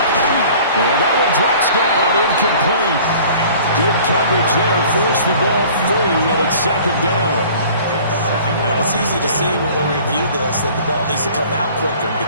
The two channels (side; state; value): both; inverted; correlation -0.48